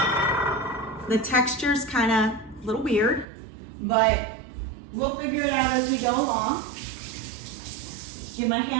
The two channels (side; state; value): left; drops out; at 3.2 s